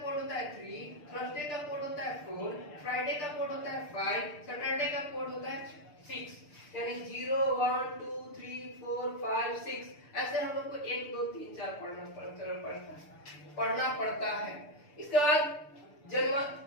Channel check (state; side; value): late; right; 6.8 ms